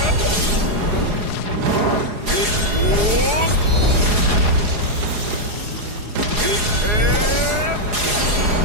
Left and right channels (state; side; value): late; left; 4.8 ms